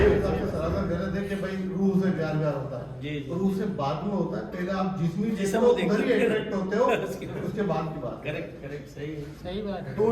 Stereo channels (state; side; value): identical; both; correlation 1.00